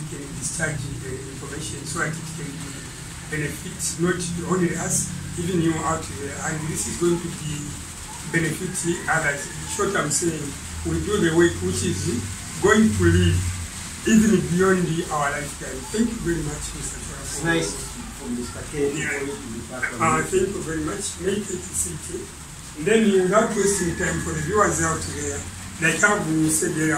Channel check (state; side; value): identical; both; correlation 1.00